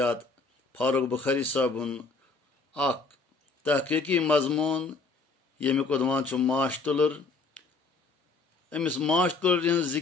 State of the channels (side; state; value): right; quieter; 4.0 dB